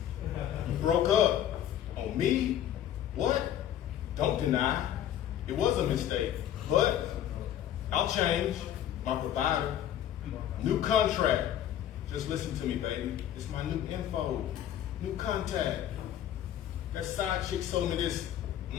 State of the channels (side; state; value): right; quieter; 11.1 dB